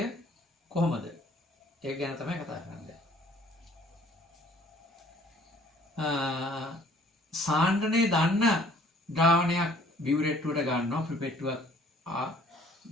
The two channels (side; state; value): both; normal; correlation 0.56